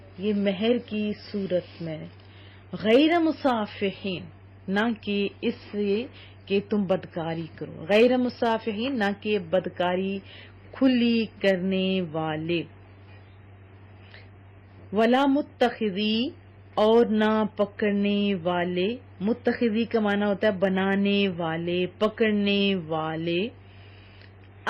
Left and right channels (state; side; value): identical; both; correlation 1.00